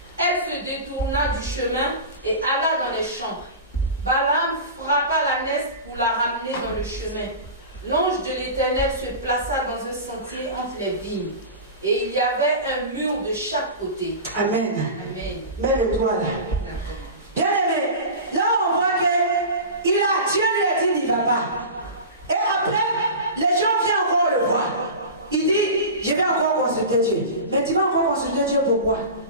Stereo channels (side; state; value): both; inverted; correlation -0.30